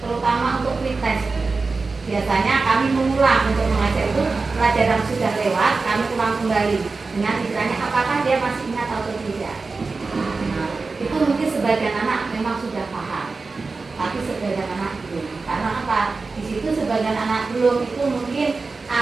untuk pretest, biasanya kami mengulang untuk mengajar itu pelajaran sudah lewat, kami ulang kembali dengan istilahnya apakah dia masih ingat atau tidak. Nah, itu mungkin sebagian anak memang sudah paham, tapi sebagian anak belum. Karena apa? Di situ sebagian anak belum itu mungkin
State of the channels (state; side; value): quieter; left; 4.1 dB